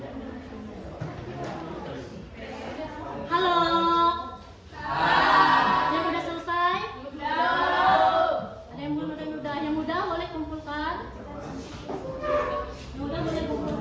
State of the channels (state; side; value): identical; both; correlation 1.00